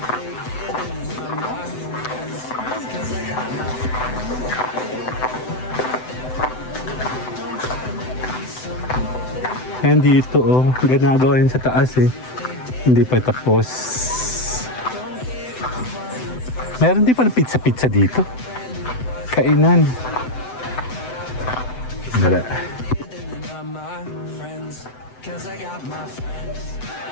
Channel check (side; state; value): right; late; 7.9 ms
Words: Yan dito, oh. Ginagawa yun sa taas, eh. Hindi pa tapos. Meron din pala pizza-pizza dito. Kainan. Dala. Cause I got my friends.